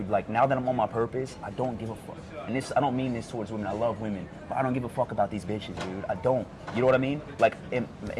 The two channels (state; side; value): identical; both; correlation 1.00